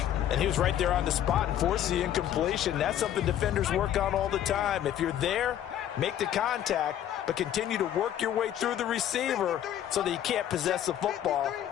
And he was right there on the spot and forced the incompletion. That's something defenders work on all the time. If you're there, make the contact, but continue to work your way through the receiver so that you can't possess the football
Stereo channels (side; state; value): right; quieter; 11.0 dB